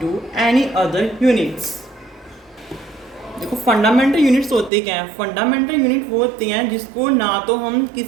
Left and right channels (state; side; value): drops out; left; at 4.7 s